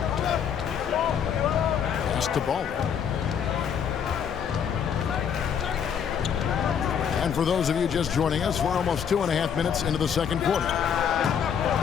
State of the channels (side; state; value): right; quieter; 7.8 dB